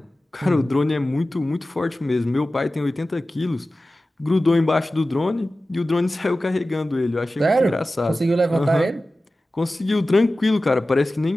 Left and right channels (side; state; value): both; normal; correlation 0.95